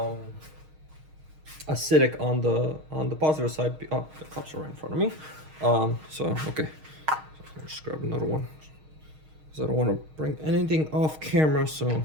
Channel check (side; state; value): left; late; 6.4 ms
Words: acidic on the positive side. Oh, the cups are right in front of me. So okay, so I'll just grab another one because I don't want to bring anything off camera. So